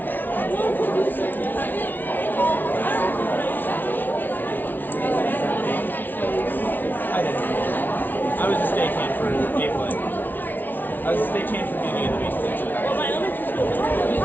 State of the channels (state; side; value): late; right; 0.087 ms